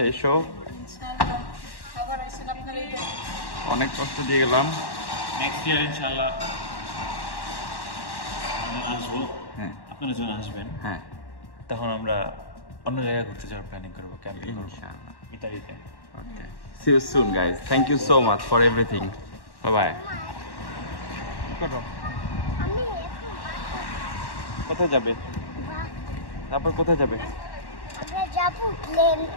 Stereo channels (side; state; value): right; late; 1.1 ms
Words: এসো। অনেক কষ্ট দিয়ে গেলাম। নেক্সট ইয়ার ইনশাআল্লাহ আমরা আসবো। হ্যাঁ আপনারা যখন আসবেন হ্যাঁ তখন আমরা অন্য জায়গায় ঘুরতে যাওয়ার প্ল্যানিং করবো, ক্যাম্পিং করবো ইনশাআল্লাহ। ইতালিতে। Okay. See you soon, guys. Thank you so much for everything. Bye bye. আমি কোথায় যাবে? তারপর কোথায় যাবে? আমরা যাবো প্লেন।